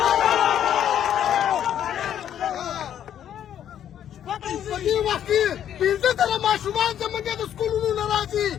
په دې وخت کې پنځه زره ماشومان زموږ د سکولونو نه راځي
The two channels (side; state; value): right; quieter; 10.1 dB